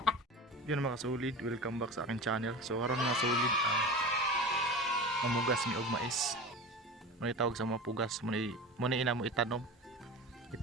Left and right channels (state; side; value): normal; both; correlation 0.31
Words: Yun mga kasulid, welcome back sa akin channel. So karon mga kasulid, mamugas ni og mais. Muna tawag sa mga pugas, muna ina mo itanom.